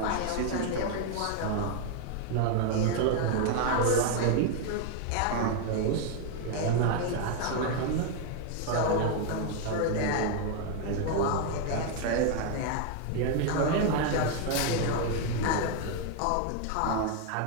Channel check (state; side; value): different; both; correlation 0.00